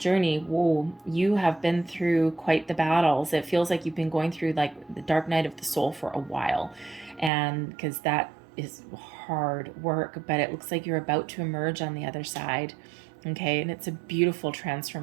whoa, you have been through quite the battles. It feels like you've been going through like the dark night of the soul for a while, and because that is hard work, but it looks like you're about to emerge on the other side. Okay, and it's a beautiful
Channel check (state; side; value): drops out; left; at 7.3 s